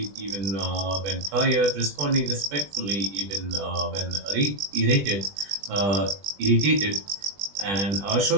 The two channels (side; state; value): left; late; 20 ms